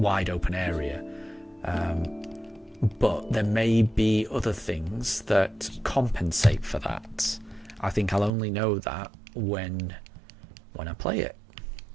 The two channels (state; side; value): drops out; left; at 8.3 s